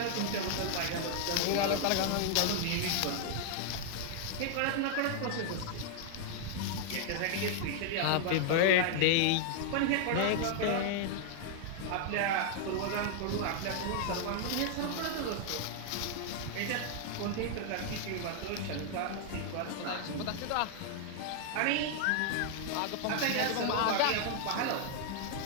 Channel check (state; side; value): different; both; correlation 0.00